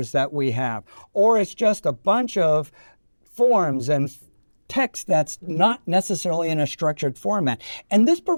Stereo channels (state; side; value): inverted; both; correlation -1.00